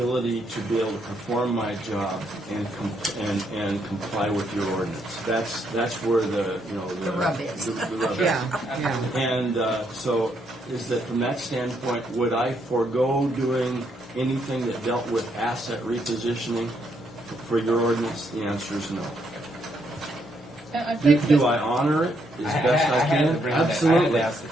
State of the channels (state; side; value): normal; both; correlation 0.75